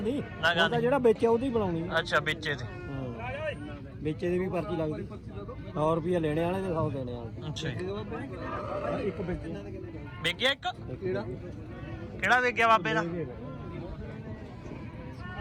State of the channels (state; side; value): identical; both; correlation 1.00